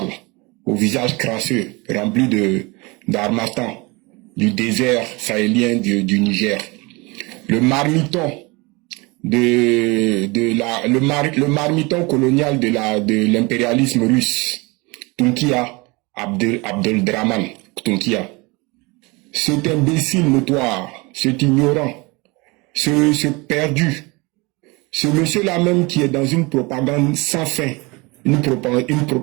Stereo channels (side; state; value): left; quieter; 25.9 dB